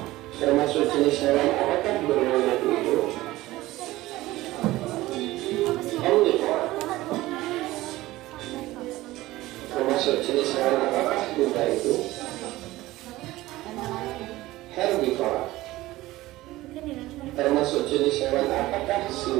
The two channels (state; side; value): quieter; left; 17.6 dB